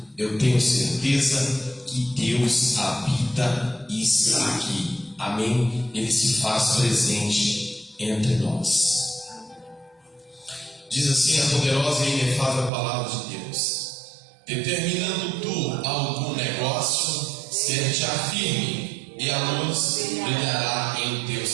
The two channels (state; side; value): drops out; left; at 12.7 s